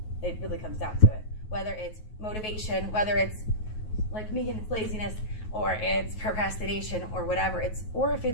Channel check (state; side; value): late; right; 9.3 ms